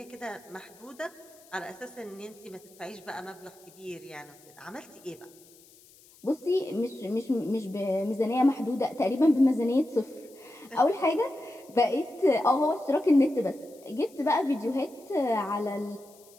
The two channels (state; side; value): noise; left; hiss, 26 dB below the sound